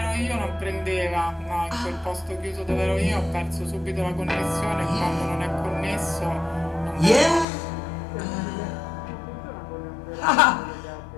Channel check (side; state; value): right; drops out; at 7.5 s